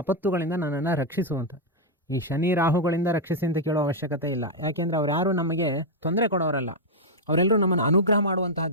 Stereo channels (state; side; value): normal; both; correlation -0.02